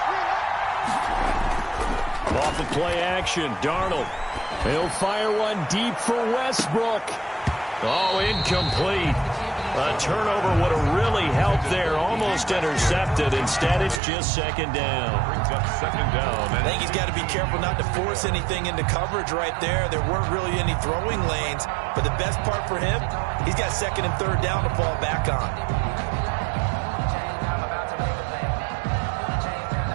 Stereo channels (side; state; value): left; drops out; at 14.0 s